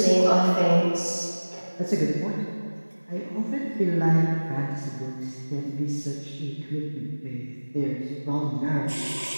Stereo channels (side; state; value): both; inverted; correlation -1.00